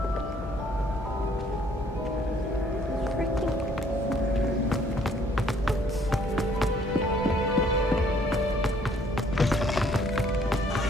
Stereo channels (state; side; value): normal; both; correlation 0.62